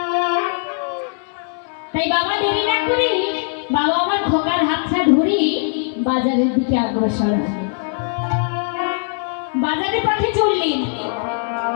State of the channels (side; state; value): right; silent; 66 dB below the other